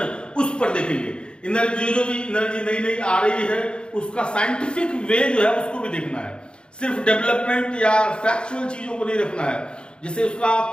उस पर देखेंगे। एनर्जी, जो भी एनर्जी नई नई आ रही है उसका साइंटिफिक वे जो है उसको भी देखना है, सिर्फ डेवलपमेंट या फैक्चुअल चीजों को नहीं रखना है, जैसे उसका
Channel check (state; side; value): late; right; 0.053 ms